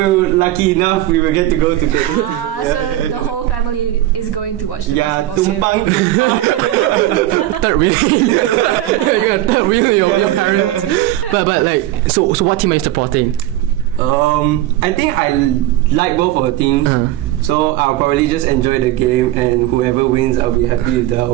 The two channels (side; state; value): left; quieter; 14.8 dB